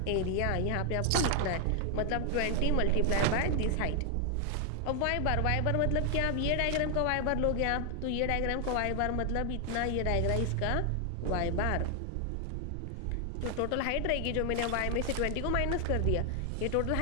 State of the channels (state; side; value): different; both; correlation 0.00